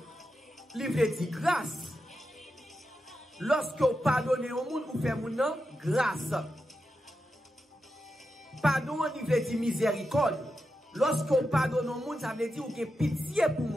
il veut dire grâce. Lorsque vous pardonnez au monde, vous faites mon nom grâce. Pardon, il veut dire miséricorde. Lorsque vous pardonnez au monde, ça veut dire que vous avez pitié pour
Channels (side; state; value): both; normal; correlation 0.88